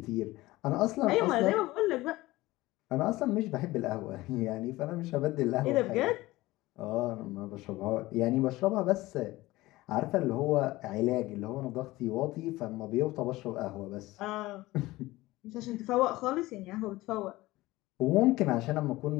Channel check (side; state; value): right; quieter; 18.8 dB